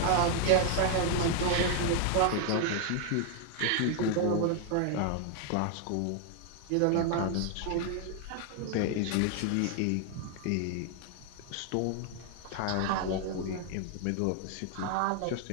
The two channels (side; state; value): both; different; correlation 0.01